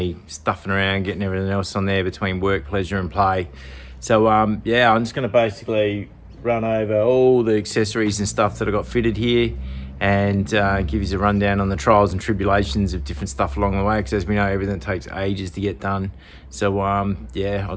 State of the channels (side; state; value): both; identical; correlation 1.00